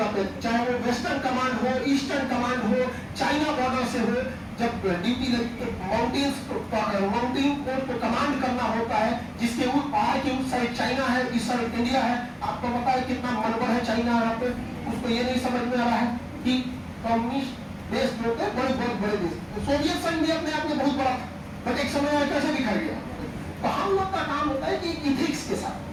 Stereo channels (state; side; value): identical; both; correlation 1.00